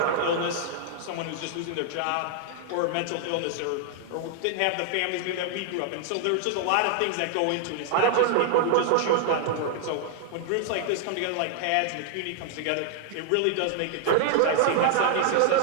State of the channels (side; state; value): both; different; correlation 0.00